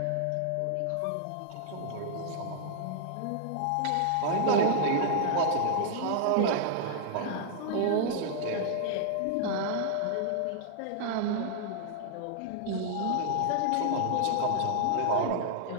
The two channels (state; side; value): different; both; correlation -0.01